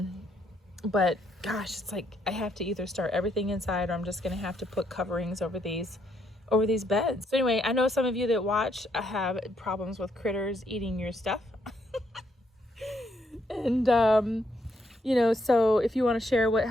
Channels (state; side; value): normal; both; correlation 0.74